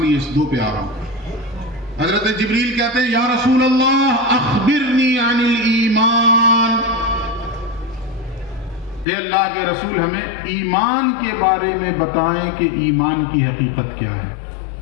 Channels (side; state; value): right; drops out; at 9.1 s